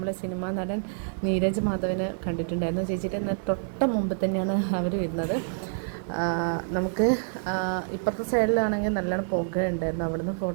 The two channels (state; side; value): silent; left; digital silence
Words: സിനിമാ നടൻ നീരജ് മാധവനെ കണ്ടിട്ടുണ്ടായിരുന്നു. ചേച്ചിയുടെ തൊട്ട മുമ്പ് തന്നെയാണ് അവർ വരുന്നത്. നമുക്ക് ഇപ്പുറത്തെ സൈഡിലാണെങ്കിൽ നല്ലോണം പുക ഉണ്ടായിരുന്നു. അവിടുന്ന്